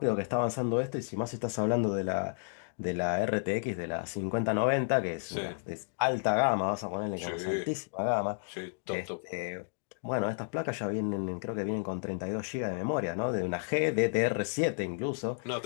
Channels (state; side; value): silent; right; digital silence